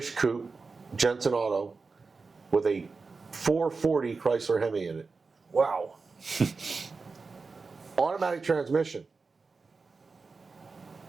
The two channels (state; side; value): quieter; left; 4.3 dB